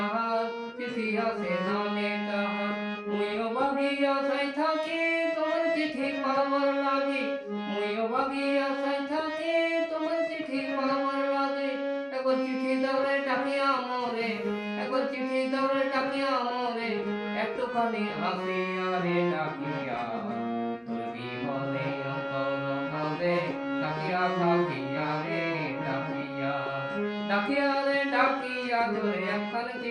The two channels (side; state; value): both; identical; correlation 1.00